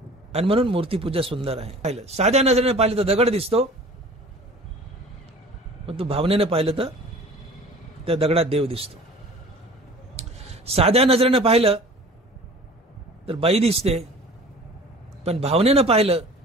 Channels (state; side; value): normal; both; correlation 0.44